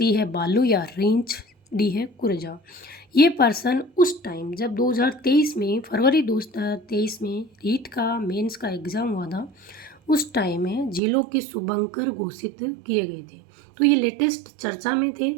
है बालू या रींछ, डी है कुरजा। ये पर्सन उस टाइम जब 2023 में फरवरी 2023 में रीट का मेंस का एग्ज़ाम हुआ था, उस टाइम में जिलों के शुभंकर घोषित किए गए थे। तो ये लेटेस्ट चर्चा में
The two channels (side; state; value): left; drops out; at 11.0 s